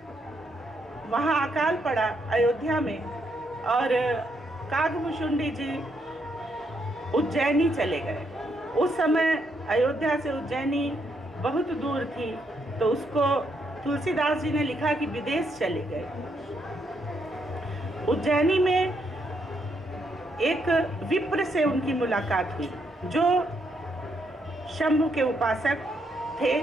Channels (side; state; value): both; normal; correlation 0.76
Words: वहाँ अकाल पड़ा अयोध्या में, और काकभूषुंडी जी उज्जैनी चले गए। उस समय अयोध्या से उज्जैनी बहुत दूर थी, तो उसको तुलसीदास जी ने लिखा कि विदेश चले गए। उज्जैनी में एक विप्र से उनकी मुलाकात हुई, जो शंभु के उपासक थे,